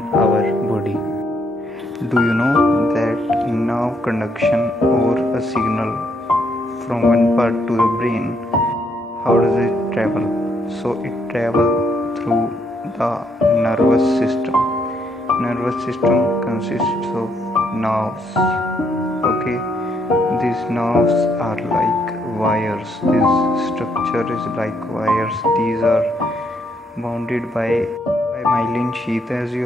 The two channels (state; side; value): normal; both; correlation 0.73